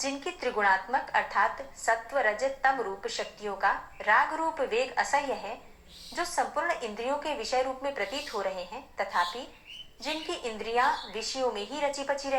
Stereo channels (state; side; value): identical; both; correlation 1.00